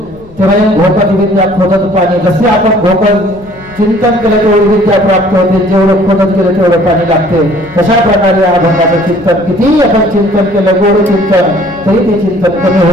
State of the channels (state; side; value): noise; left; rumble, 23 dB below the sound